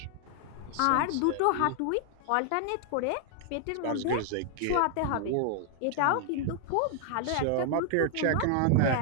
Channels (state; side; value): different; both; correlation 0.00